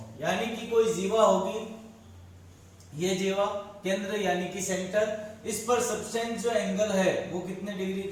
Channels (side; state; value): both; identical; correlation 1.00